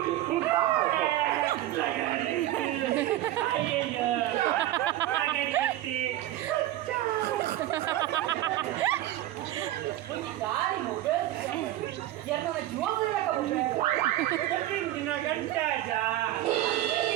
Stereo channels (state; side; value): quieter; left; 14.4 dB